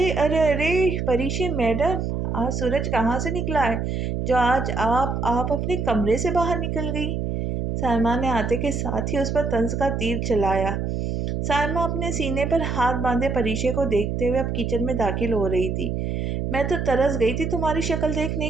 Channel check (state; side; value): noise; right; hum, 2 dB below the sound